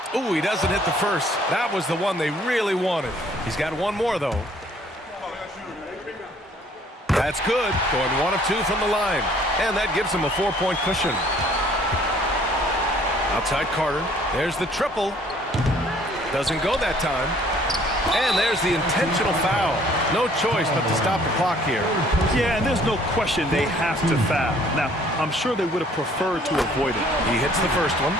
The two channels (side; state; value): both; normal; correlation 0.58